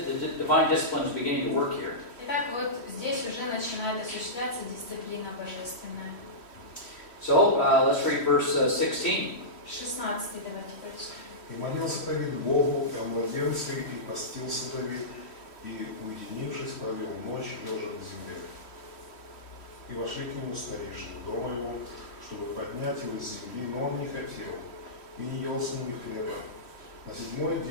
the divine discipline is beginning to work here. Итак, вот здесь уже начинает осуществляться дисциплина божественная. So let's read verse 16. 16 давайте прочитаем. И молился Давид Богу о младенце, и постился Давид, и, уединившись, провел ночь, лежа на земле. И вошли к нему старейшины дома его, чтобы поднять его с земли, но он не хотел, и не ел с ними хлеба. На 7-й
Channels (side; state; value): right; late; 3.1 ms